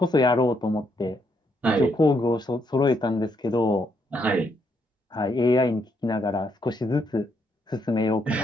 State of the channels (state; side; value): normal; both; correlation 0.75